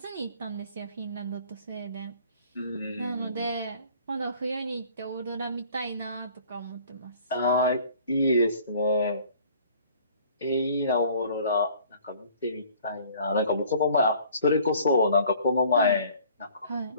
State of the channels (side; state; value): both; inverted; correlation -0.53